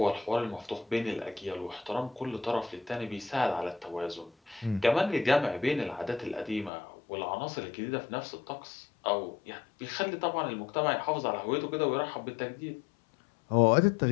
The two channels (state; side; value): drops out; right; at 6.7 s